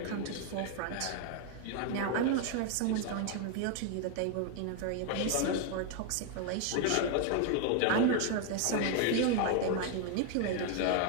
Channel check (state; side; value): different; both; correlation 0.01